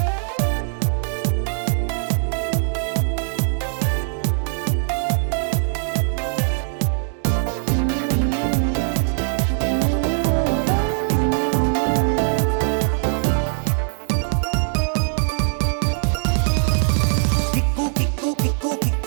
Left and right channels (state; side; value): silent; left; 65 dB below the other